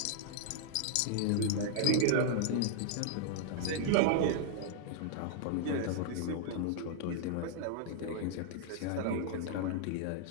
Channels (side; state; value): both; different; correlation -0.01